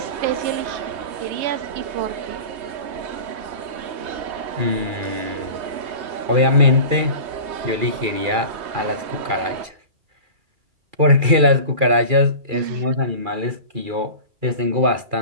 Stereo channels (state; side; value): late; left; 2.4 ms